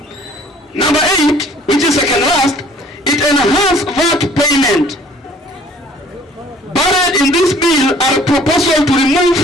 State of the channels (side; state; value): both; normal; correlation 0.54